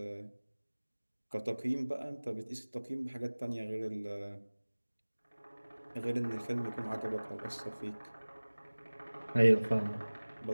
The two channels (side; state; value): both; inverted; correlation -1.00